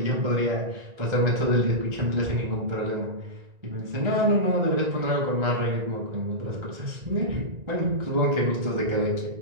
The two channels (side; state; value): left; late; 1.9 ms